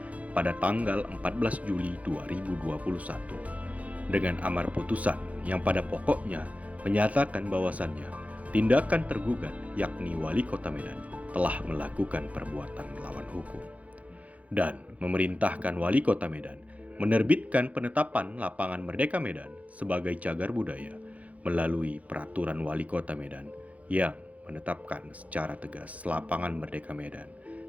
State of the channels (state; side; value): late; left; 0.068 ms